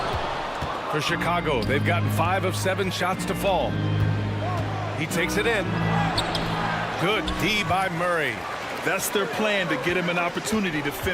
For Chicago, they've gotten 5 of 7 shots to fall. He takes it in. Good D by Murray. That's their plan, to get him an opportunity to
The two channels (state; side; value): identical; both; correlation 1.00